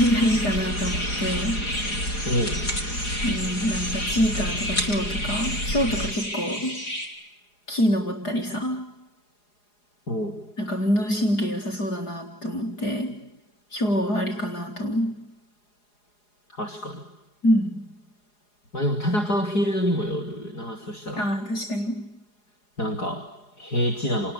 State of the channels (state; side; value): late; right; 4.8 ms